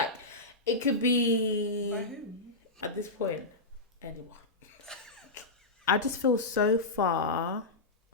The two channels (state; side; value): quieter; right; 3.0 dB